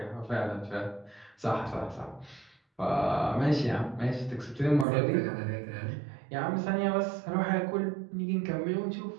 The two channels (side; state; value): left; drops out; at 4.9 s